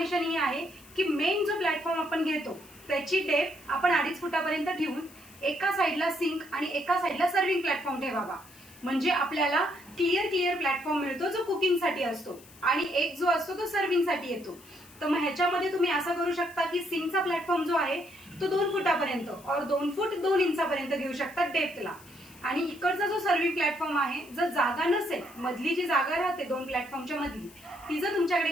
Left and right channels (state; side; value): noise; left; hiss, 23 dB below the sound